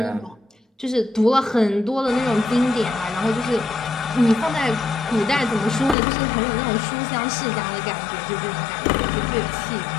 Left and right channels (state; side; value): drops out; right; at 6.0 s